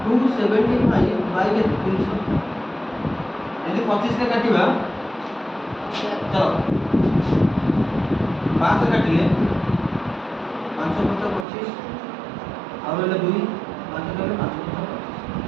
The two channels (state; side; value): drops out; left; at 11.5 s